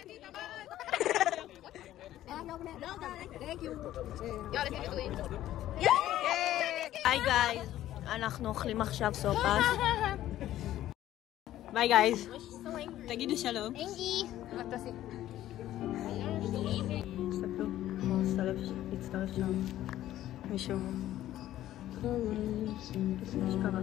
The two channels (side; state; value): right; quieter; 13.4 dB